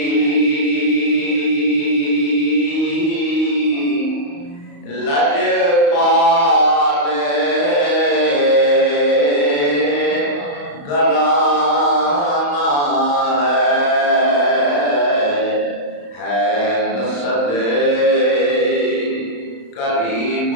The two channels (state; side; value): late; right; 35 ms